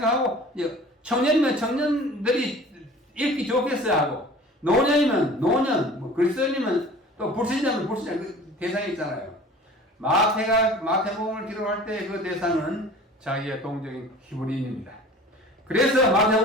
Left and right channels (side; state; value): both; normal; correlation 0.44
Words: 청년이면 청년들이 읽기 좋겠어야 하고 노년이면 노년, 뭐 그리스도인이면 또 불신자면 불신자 그 대상이 있잖아요. 마태복음을 기록할 때 그 대상은 자기의 동족인 히브리인입니다. 그래서